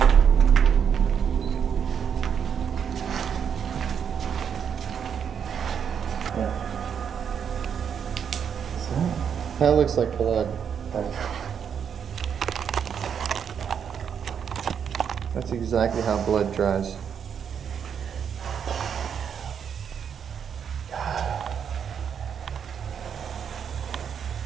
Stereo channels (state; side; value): quieter; left; 7.7 dB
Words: That looks like blood. That's exactly how blood dries.